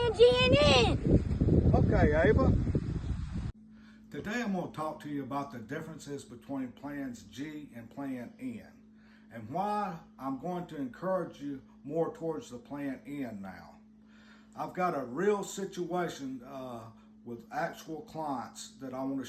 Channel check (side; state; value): both; identical; correlation 1.00